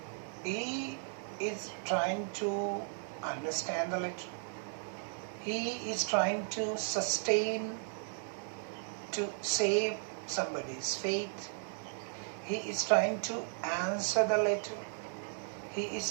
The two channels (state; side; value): silent; left; 54 dB below the other